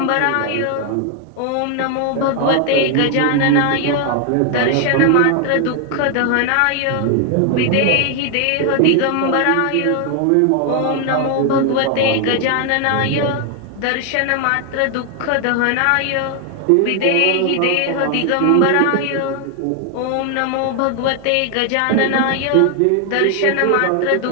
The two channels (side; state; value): both; different; correlation 0.00